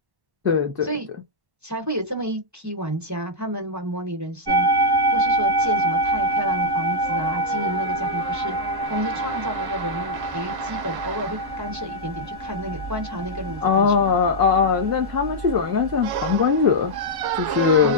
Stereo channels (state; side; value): late; left; 1.1 ms